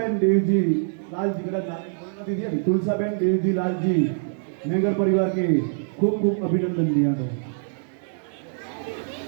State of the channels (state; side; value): silent; left; digital silence